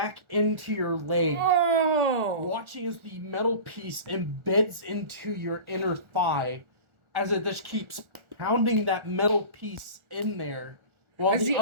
into your leg. Oh! Watching as the metal piece embeds into your inner thigh as it just keeps pounding that metal piece in there. While As the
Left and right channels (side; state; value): left; late; 1.4 ms